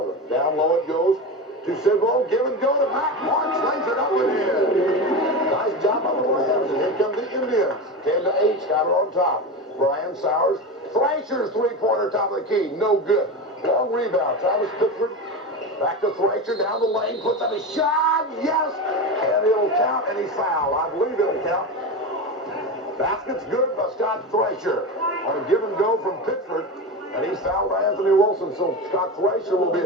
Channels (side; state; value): both; normal; correlation 0.22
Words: Down low it goes to Sidwell. Give and go to Matt March. Lays it up and in. Nice job on the Rams. And here come the Indians. 10-8. Schuyler on top. Brian Sowers. Thracer's 3-pointer top of the key. No good. Long rebound. Travis Pittsford. Back to Thracer. Down the lane. Puts up a shot. Yes. And it'll count. And he's fouled. I believe it'll count. Basket's good by Scott Thracer. On a give and go from Pittsford. And he's fouled by Anthony Wilson, so Scott Thracer will be